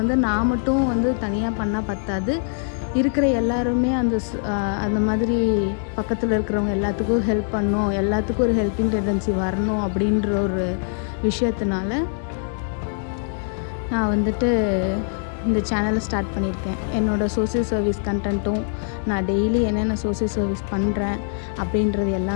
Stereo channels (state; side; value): silent; right; digital silence